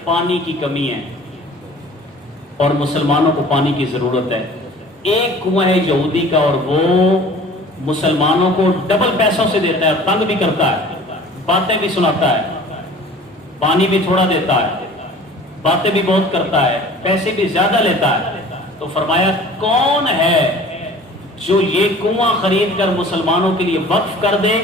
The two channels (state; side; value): normal; both; correlation 0.45